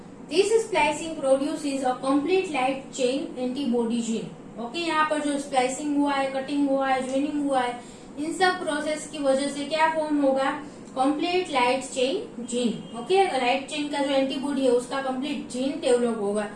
this splicing produces a complete light chain antibody gene. Okay, यहाँ पर जो स्प्लाइसिंग हुआ है, कटिंग हुआ है, ज्वाइनिंग हुआ है, इन सब प्रोसेस की वजह से क्या फॉर्म होगा, complete light chain gene. Okay, light chain का जो एंटीबॉडी है उसका कंप्लीट जीन डेवलप होगा,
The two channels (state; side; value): identical; both; correlation 1.00